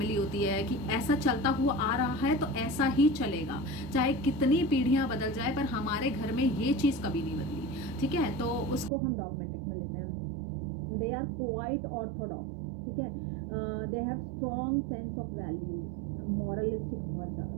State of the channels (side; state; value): left; drops out; at 8.9 s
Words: होती है कि ऐसा चलता हुआ आ रहा है तो ऐसा ही चलेगा, चाहे कितनी पीढ़ियाँ बदल जाए, पर हमारे घर में ये चीज़ कभी नहीं बदली. ठीक है, तो उसको हम डॉगमेटिक में लेते हैं. They are quite orthodox. ठीक है, they have strong sense of values. Moralistic, बहुत ज़्यादा,